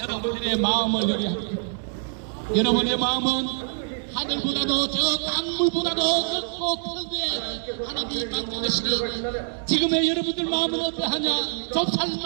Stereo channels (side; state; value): left; silent; digital silence